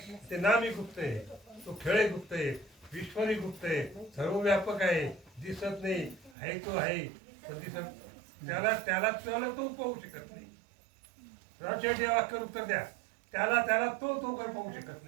ते नामी गुप्त आहे. तो खेळ गुप्त आहे. ईश्वरी गुप्त आहे. सर्वव्यापक आहे. दिसत नाही आहे तो आहे पण दिसत त्याला तो पाहू शकत नाही. राजशेठी वाक्य उत्तर द्या. त्याला तो काही पाहू शकत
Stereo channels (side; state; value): left; drops out; at 6.4 s